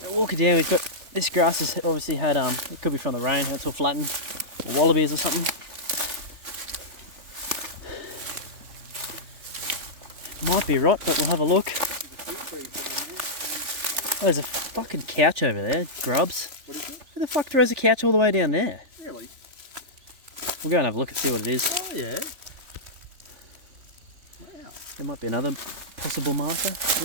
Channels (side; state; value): left; late; 3.5 ms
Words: Walking down, we've got this grass has obviously had, it could be from the rain, it's all flattened, or wallabies or something. Might be rot, but we'll have a look. There's a fucking couch over there, grubs. What is it? Who the fuck throws a couch all the way down there? Really? We'll go and have a look and see what it is. Oh yeah. Wow. There might be another possible marker.